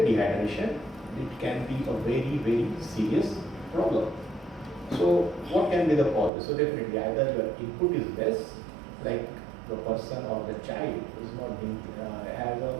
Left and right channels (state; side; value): drops out; left; at 6.3 s